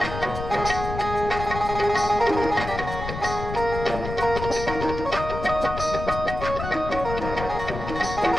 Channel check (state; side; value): noise; left; rumble, 7 dB below the sound